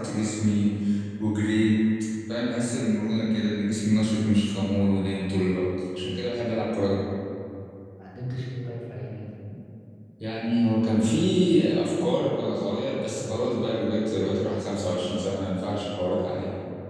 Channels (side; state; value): both; identical; correlation 1.00